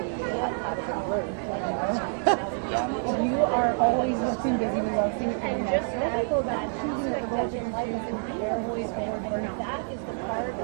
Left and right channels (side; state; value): left; silent; 60 dB below the other